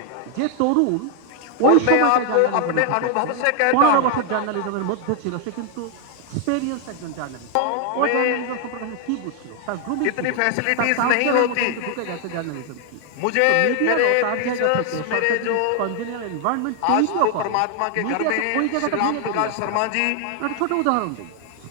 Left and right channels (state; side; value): different; both; correlation 0.00